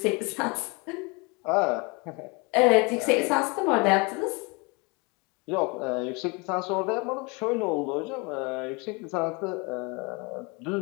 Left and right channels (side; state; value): right; quieter; 29.0 dB